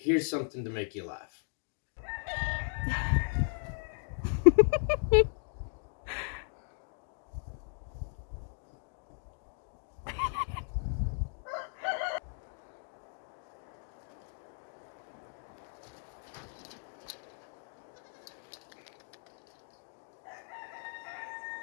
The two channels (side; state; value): right; silent; 54 dB below the other